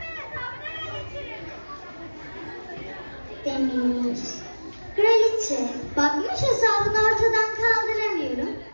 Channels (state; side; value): inverted; both; correlation -1.00